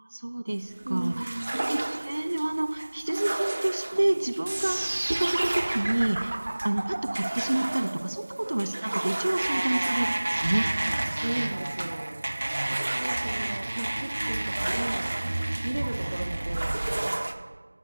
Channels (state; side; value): inverted; both; correlation -1.00